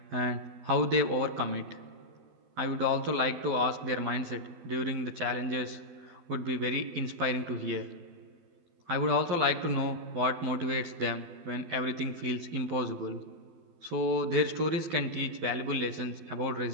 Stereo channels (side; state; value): left; late; 12 ms